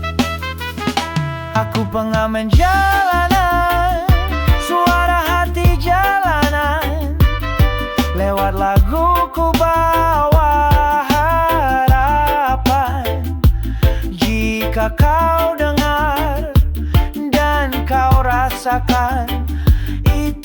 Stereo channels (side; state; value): both; identical; correlation 1.00